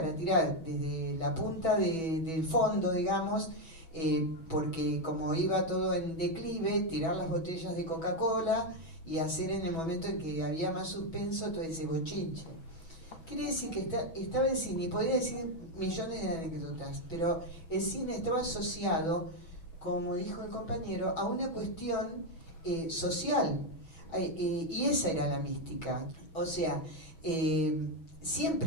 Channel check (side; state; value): right; late; 6.2 ms